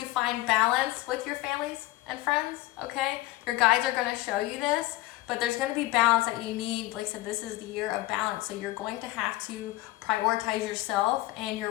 find balance with your families and friends, okay? Your guides are going to show you this, but there's going to be balance that you need. Like I said, this is the year of balance, so you're going to have to prioritize yourself and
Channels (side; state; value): right; quieter; 18.2 dB